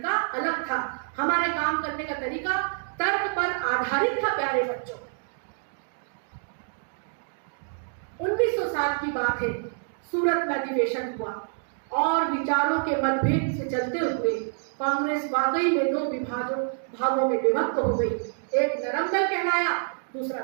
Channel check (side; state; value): left; silent; digital silence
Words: अलग था। हमारे काम करने का तरीका तर्क पर आधारित था। प्यारे बच्चों, 1900 साल की बात है, सूरत में अधिवेशन हुआ और विचारों के मतभेद से चलते हुए कांग्रेस वाकई में 2 भागों में विभक्त हो गई। एक नरम दल कहलाया, दूसरा